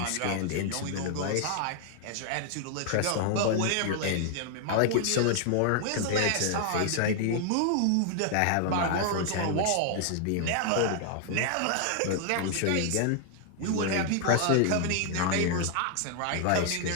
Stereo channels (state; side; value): different; both; correlation 0.00